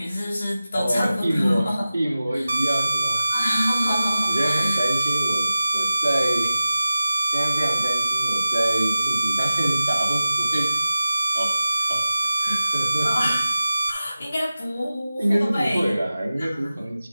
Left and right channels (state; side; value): inverted; both; correlation -0.96